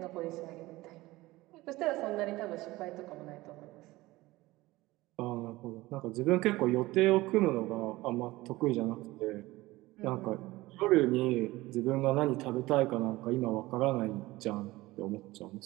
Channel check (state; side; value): quieter; left; 19.2 dB